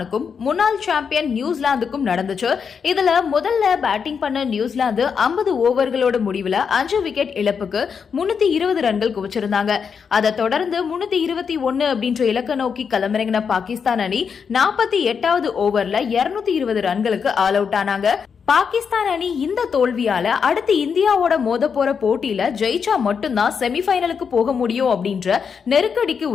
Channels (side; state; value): right; quieter; 6.4 dB